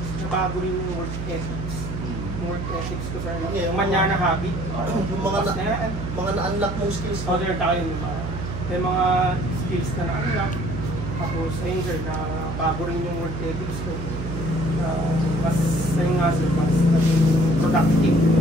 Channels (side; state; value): right; noise; hum, 6 dB below the sound